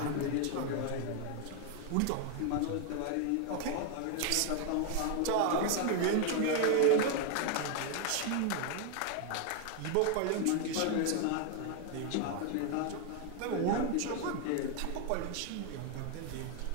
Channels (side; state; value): both; different; correlation 0.00